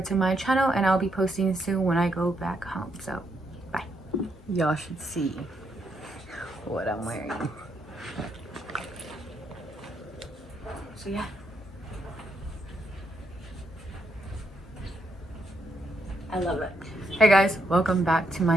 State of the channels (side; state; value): both; normal; correlation 0.77